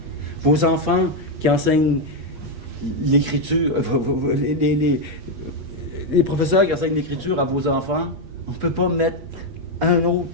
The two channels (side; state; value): left; late; 8.4 ms